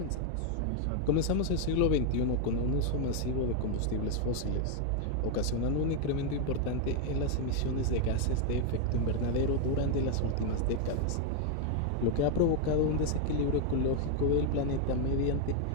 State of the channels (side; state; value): both; different; correlation 0.00